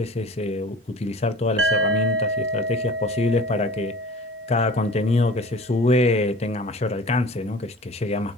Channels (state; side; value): normal; both; correlation 0.41